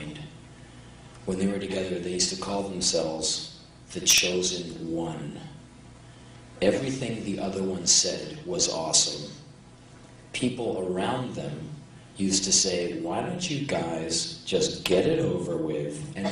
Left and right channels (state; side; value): identical; both; correlation 1.00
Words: When they were together, they used to call themselves the Chosen One. Everything the other one said was awesome. People around them used to say, "Why don't you guys just get it over with and